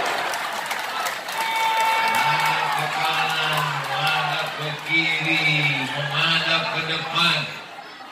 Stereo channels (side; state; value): both; identical; correlation 1.00